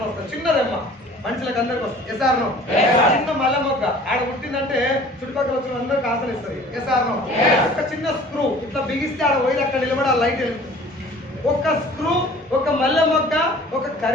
వస్తుంది, చిన్న రెమ్మ మనుషులకు అందరికి వస్తుంది. ఎస్ఆర్నో? చిన్న మల్ల మొగ్గ ఆడ పుట్టిందంటే చుట్టుపక్కల వచ్చిన అందరికి ఆసన ఇస్తుంది. ఎస్ఆర్నో? ఒక చిన్న స్క్రూ ఇట్లా బిగిస్తే ఆడ పోయి అక్కడ నిలబడి ఆ లైట్ వెళ్తుంది. ఒక స్క్రూ, ఒక మల్లె మొగ్గ, ఒక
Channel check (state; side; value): normal; both; correlation 0.48